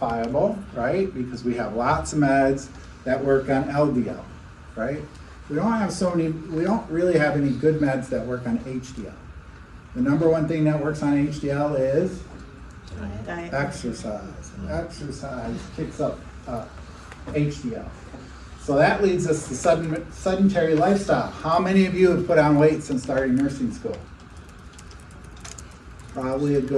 right? Because we have lots of meds that work on LDL, right? We don't really have any good meds that work on HDL. The number one thing that works on HDL is Diet. exercise. Exercise kicks up HDL. So that leads us to sedentary lifestyle. How many of you have put on weight since starting nursing school? Probably a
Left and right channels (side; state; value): both; identical; correlation 1.00